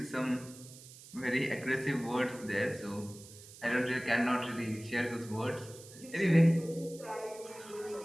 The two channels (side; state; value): right; noise; hiss, 18 dB below the sound